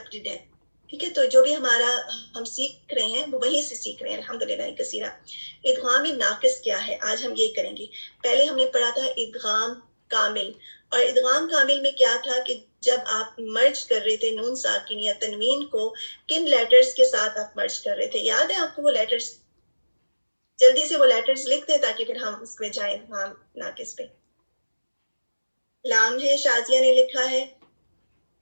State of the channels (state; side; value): inverted; both; correlation -1.00